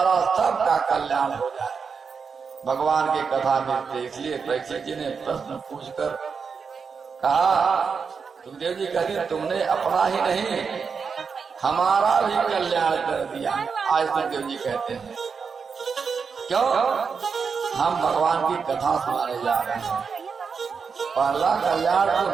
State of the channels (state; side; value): quieter; left; 5.7 dB